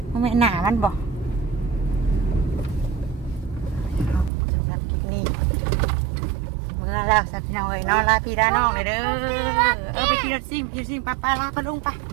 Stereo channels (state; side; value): drops out; left; at 4.3 s